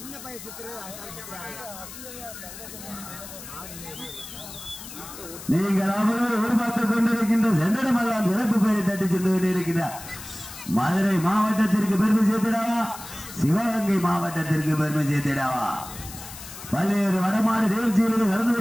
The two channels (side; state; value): left; noise; hiss, 13 dB below the sound